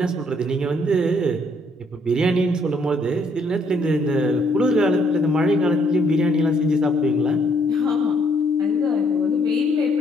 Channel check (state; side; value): normal; both; correlation 0.68